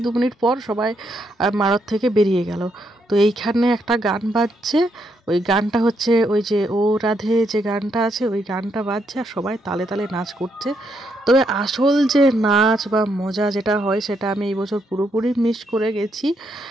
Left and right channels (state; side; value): normal; both; correlation 0.77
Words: 2 মিনিট পর সবাই মারত থেকে বেরিয়ে গেল। তো এইখানে একটা গান বাজছে, ওই গানটা হচ্ছে ওই যে ও রাধে যে গানটা আছে, ওই গানটা বাজছে আর সবাই তালে তালে নাচ করছে। তবে আসল যে নাচ বা মজা যেটা হয় সেটা আমি এই বছর পুরোপুরি মিস করে গেছি।